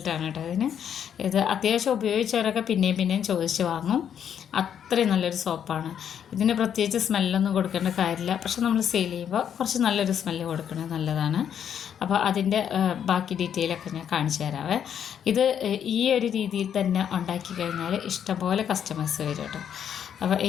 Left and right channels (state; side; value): quieter; right; 8.8 dB